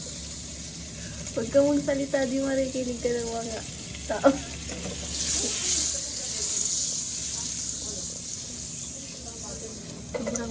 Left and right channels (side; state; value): both; identical; correlation 1.00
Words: Huwag ka mong salita, di marikinig ka ng mga tao.